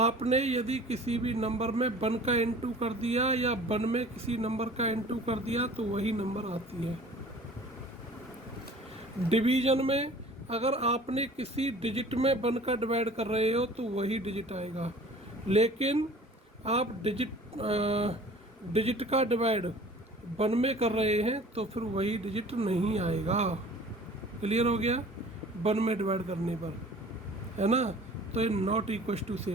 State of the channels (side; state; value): both; normal; correlation 0.47